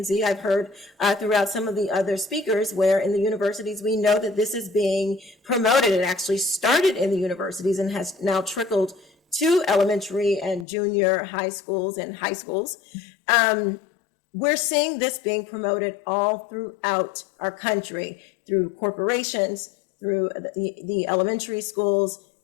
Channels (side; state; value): right; drops out; at 10.7 s